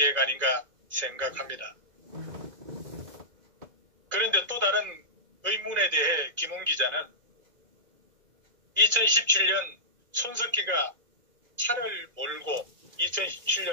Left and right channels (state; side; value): late; left; 2.0 ms